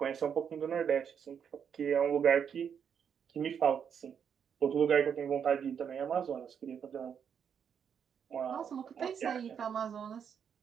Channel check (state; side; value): quieter; left; 7.6 dB